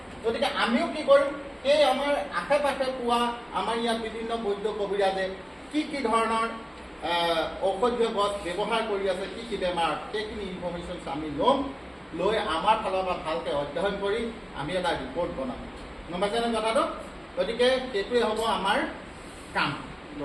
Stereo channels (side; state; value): both; identical; correlation 1.00